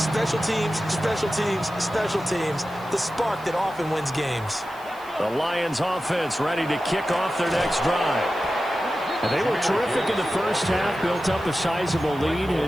teams, special teams, special teams. The spark that often wins games. The Lions offense ready to kick off their next drive. And they were terrific in the first half, built up a sizable lead, and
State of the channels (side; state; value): right; noise; hiss, 24 dB below the sound